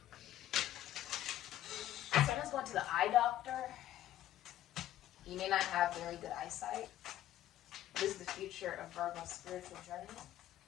Someone's going to the eye doctor. You may not have very good eyesight. What is the future of Virgo's spiritual journey?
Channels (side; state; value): right; quieter; 12.9 dB